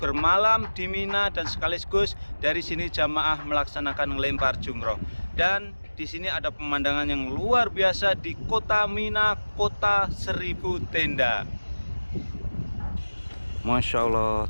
bermalam di Mina, dan sekaligus dari sini jamaah melaksanakan lempar jumroh. Dan di sini ada pemandangan yang luar biasa di kota Mina, Kota Seribu Tenda. Masya Allah,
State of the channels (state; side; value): inverted; both; correlation -1.00